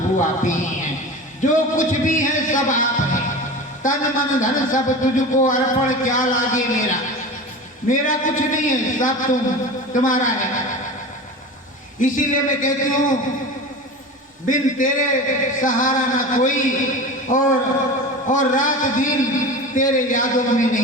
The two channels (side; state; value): both; normal; correlation 0.32